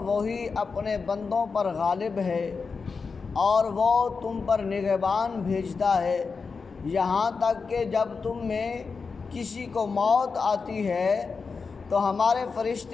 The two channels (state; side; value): quieter; right; 4.9 dB